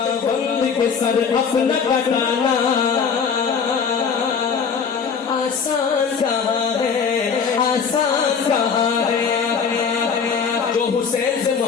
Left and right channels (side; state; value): right; quieter; 6.2 dB